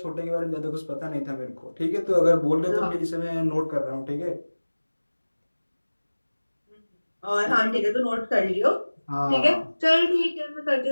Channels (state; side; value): inverted; both; correlation -1.00